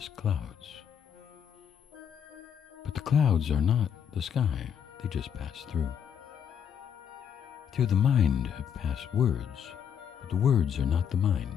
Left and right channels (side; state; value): right; quieter; 8.1 dB